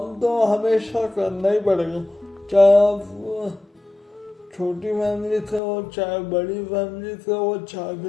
तो हमेशा करना ही पड़ेगा, चाहे आप छोटी फैमिली से हो, चाहे बड़ी फैमिली से हो, चाहे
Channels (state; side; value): drops out; right; at 5.6 s